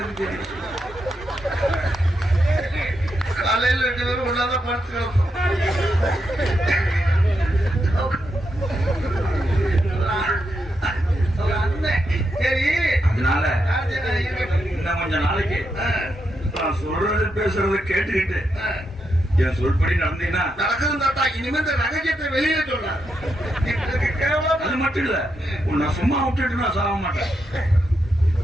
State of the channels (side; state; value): both; normal; correlation 0.83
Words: தெரியும். காலையில் 2 பேரும் ஒன்னாதான் படுத்து கிடப்போம். சரி, அதனால இன்னும் கொஞ்ச நாளைக்கு நான் சொல்றது பேசுறத கேட்டுக்கிட்டு என் சொல்படி நடந்தீங்கன்னா நடக்குது தாத்தா. இனிமே இந்த ரகசியத்தை வெளியில சொன்ன அது மட்டும் இல்ல, உன்னை சும்மா விட்டுட்டு நான் சாக மாட்டேன்.